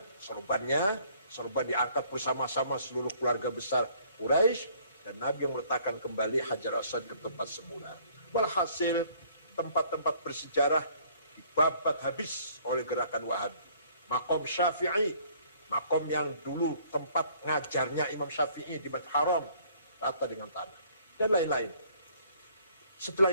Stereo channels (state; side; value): inverted; both; correlation -0.59